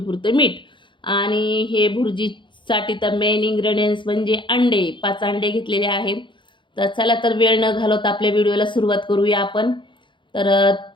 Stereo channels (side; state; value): right; late; 0.23 ms